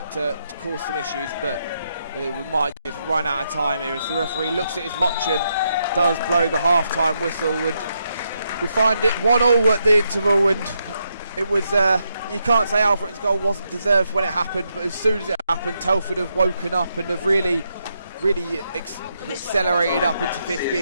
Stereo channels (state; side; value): inverted; both; correlation -0.80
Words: to cause some issues, but we might just run out of time here as the referee looks at his watch and does blow the half-time whistle, and we find it 1-1 at the interval. And it was you can't say Alfreton's goal wasn't deserved when it happened, but as soon as it happened, Telford have woken up and have really accelerated up into fifth